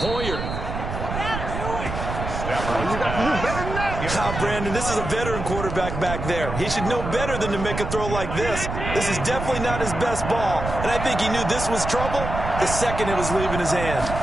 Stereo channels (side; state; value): right; noise; rumble, 5 dB below the sound